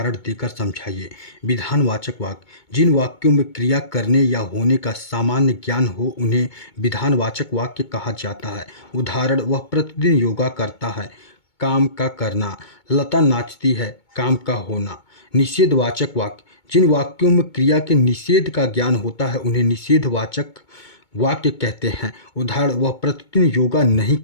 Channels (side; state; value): right; late; 2.2 ms